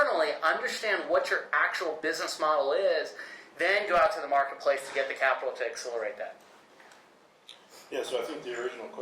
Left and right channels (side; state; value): both; identical; correlation 1.00